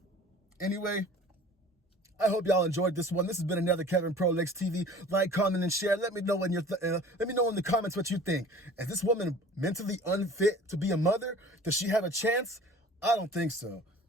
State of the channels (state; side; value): normal; both; correlation 0.45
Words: Anyway, I hope y'all enjoyed this one. This has been another Kevin Pro Licks TV. Like, comment, and share. Let me know in the comments what you think. Is this woman mentally unfit to be a mother? Does she have a chance? I don't think so.